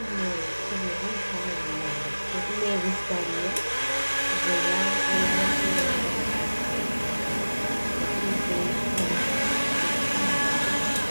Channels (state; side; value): inverted; both; correlation -1.00